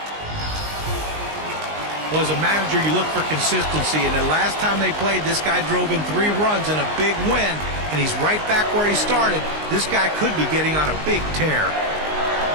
Well, as a manager, you look for consistency, and the last time they played, this guy drove in 3 runs and a big win, and he's right back where he started. This guy could be getting on a big tear.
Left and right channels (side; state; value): left; late; 19 ms